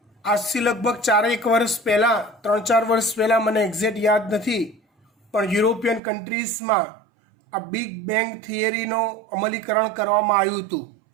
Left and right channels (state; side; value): drops out; left; at 6.0 s